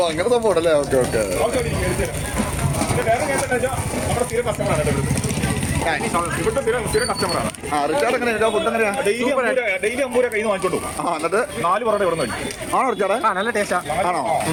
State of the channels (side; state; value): both; identical; correlation 1.00